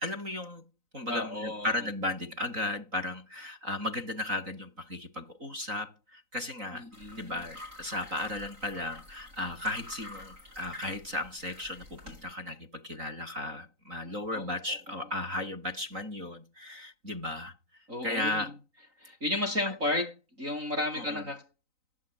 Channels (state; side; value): late; left; 3.9 ms